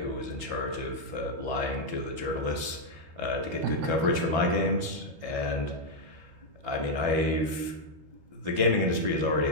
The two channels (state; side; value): late; left; 12 ms